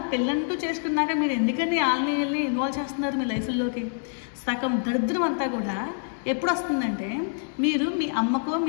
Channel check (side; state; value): right; silent; digital silence